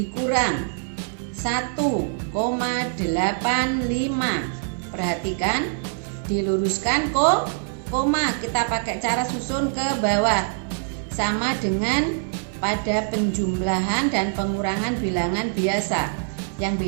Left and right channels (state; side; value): silent; left; 63 dB below the other